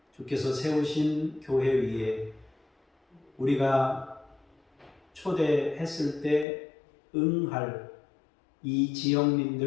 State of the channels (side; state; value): right; drops out; at 6.5 s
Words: 주께서 세우신 교회 위에 우리가 초대했을 때 응할 이